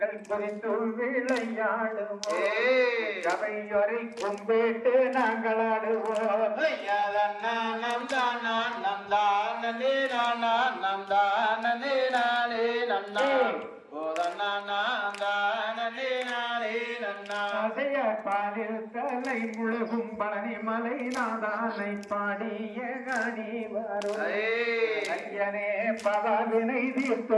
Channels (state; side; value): identical; both; correlation 1.00